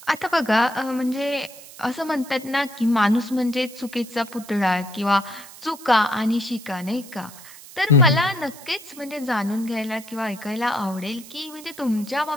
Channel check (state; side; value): noise; right; hiss, 17 dB below the sound